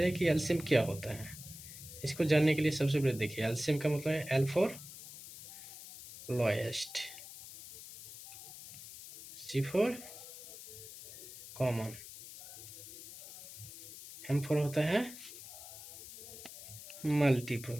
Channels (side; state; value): left; noise; hiss, 14 dB below the sound